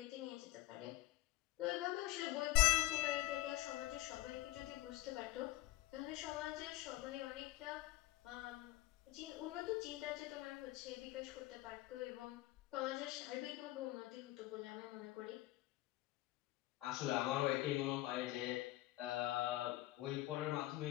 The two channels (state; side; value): quieter; right; 16.5 dB